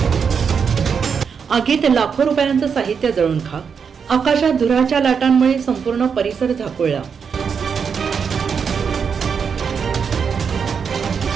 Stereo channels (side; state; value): left; quieter; 6.4 dB